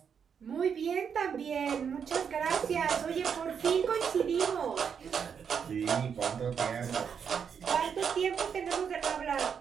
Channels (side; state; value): left; quieter; 7.1 dB